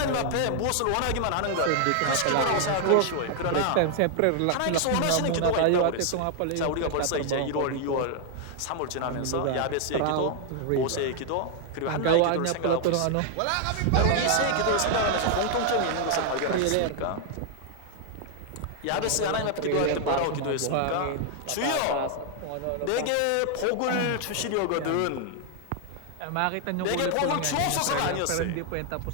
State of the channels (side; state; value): both; different; correlation 0.00